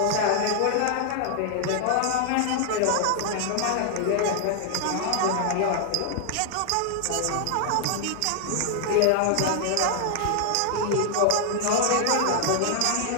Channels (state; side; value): different; both; correlation 0.00